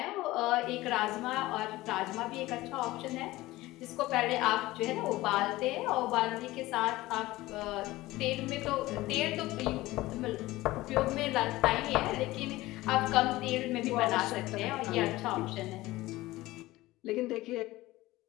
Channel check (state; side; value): quieter; right; 18.3 dB